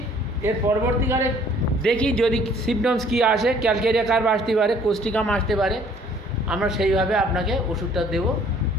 এর পরবর্তীকালে দেখি যদি সিমটমস কী আসে, ক্যালকেরিয়া কার্ভ আসতে পারে, কোস্টিকাম আসতে পারে, আমরা সেইভাবে আপনাকে ওষুধটা দেবো।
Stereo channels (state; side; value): normal; both; correlation 0.57